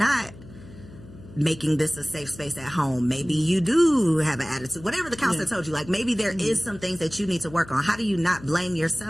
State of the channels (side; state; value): left; noise; hum, 18 dB below the sound